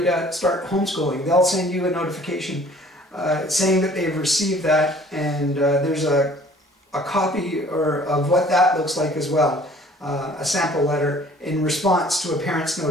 to start homeschooling. They'll send you a notification saying that they've received that, and there's a copy of what that looks like as well. a sample letter in response to a parent's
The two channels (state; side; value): normal; both; correlation 0.53